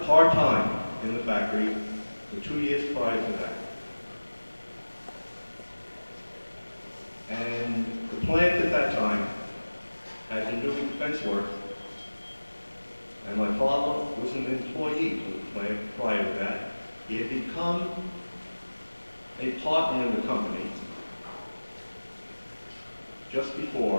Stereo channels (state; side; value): inverted; both; correlation -1.00